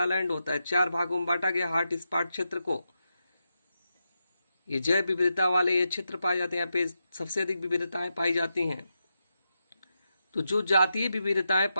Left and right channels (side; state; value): both; inverted; correlation -0.87